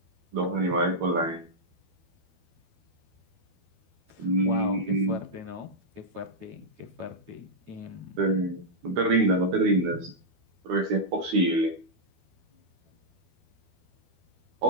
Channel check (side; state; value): left; late; 12 ms